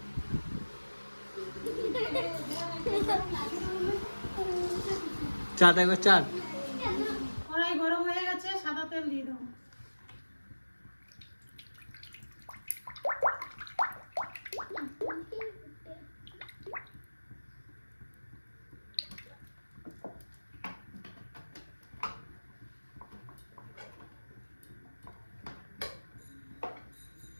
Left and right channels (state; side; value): inverted; both; correlation -1.00